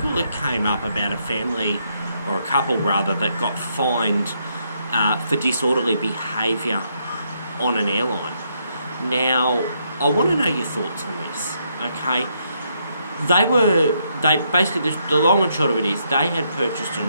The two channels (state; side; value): inverted; both; correlation -0.75